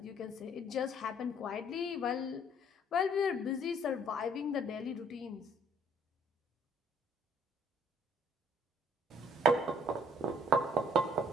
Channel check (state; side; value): normal; both; correlation 0.62